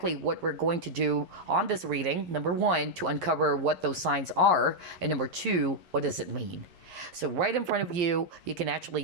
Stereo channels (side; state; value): left; late; 11 ms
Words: what we're going to do on this reading. Number one, to uncover what those signs are. And number two, what does it mean? So right in front of you, you can